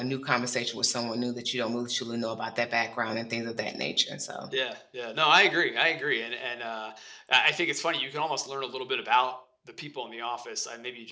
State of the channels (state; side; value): identical; both; correlation 1.00